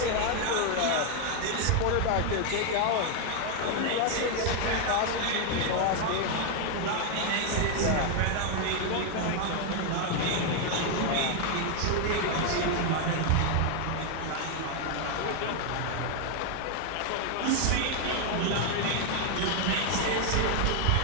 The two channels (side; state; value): both; different; correlation 0.00